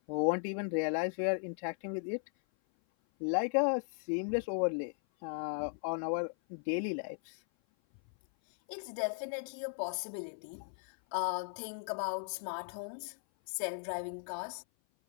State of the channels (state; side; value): silent; right; 53 dB below the other